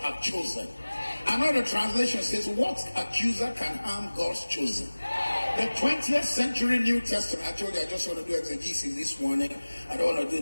chosen? Another translation says, what accuser can harm God's chosen? The 20th century New Testament, I told you I just want to do exegesis this morning. I don't want to do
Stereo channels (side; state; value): both; inverted; correlation -1.00